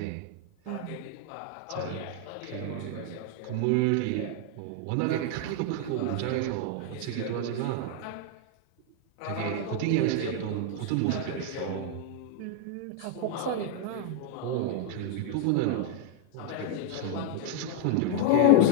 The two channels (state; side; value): different; both; correlation 0.00